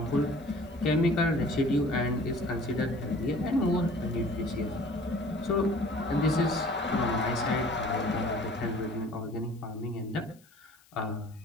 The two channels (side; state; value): left; noise; hiss, 29 dB below the sound